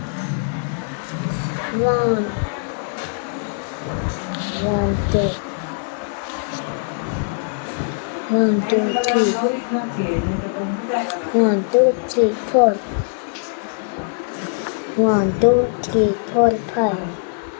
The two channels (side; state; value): right; silent; digital silence